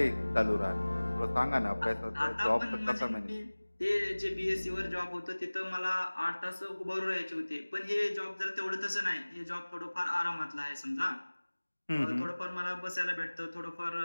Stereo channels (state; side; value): inverted; both; correlation -1.00